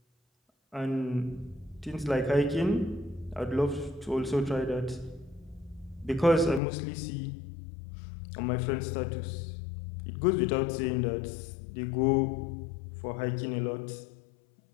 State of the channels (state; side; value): drops out; right; at 6.6 s